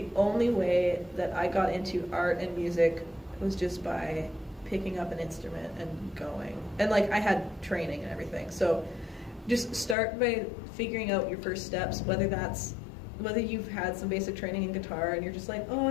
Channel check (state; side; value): drops out; right; at 10.0 s